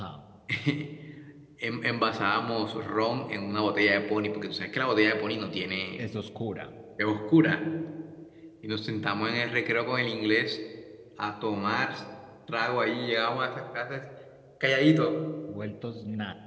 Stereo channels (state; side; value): identical; both; correlation 1.00